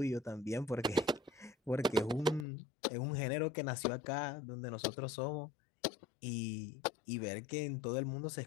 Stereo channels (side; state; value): right; drops out; at 2.5 s